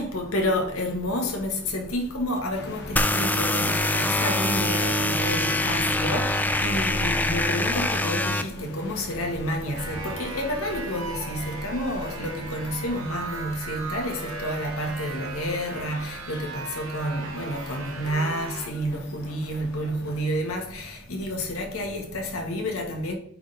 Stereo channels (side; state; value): both; normal; correlation 0.38